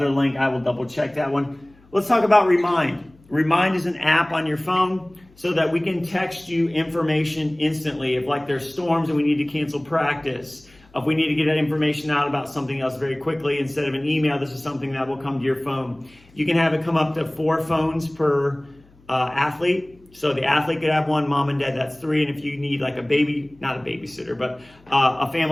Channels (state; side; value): noise; left; hum, 29 dB below the sound